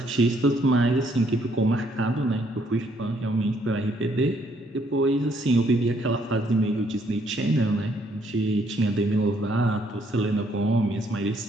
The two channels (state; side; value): normal; both; correlation 0.68